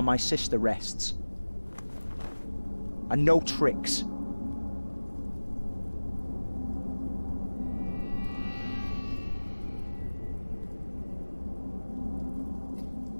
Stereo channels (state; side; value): inverted; both; correlation -1.00